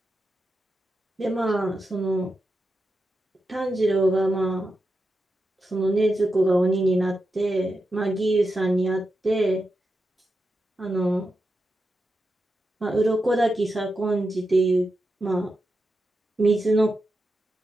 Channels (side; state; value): both; normal; correlation 0.88